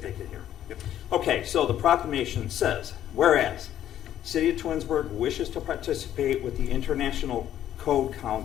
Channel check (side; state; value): right; quieter; 11.3 dB